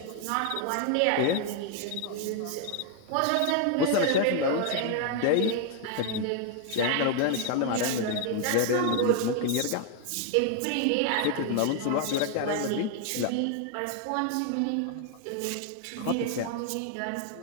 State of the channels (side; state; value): both; different; correlation 0.00